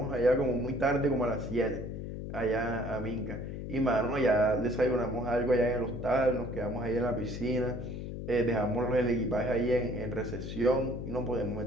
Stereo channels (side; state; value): left; noise; hum, 7 dB below the sound